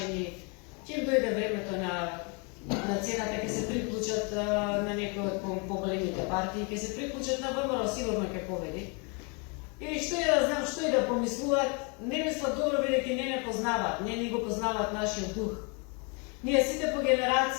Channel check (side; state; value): right; quieter; 33.6 dB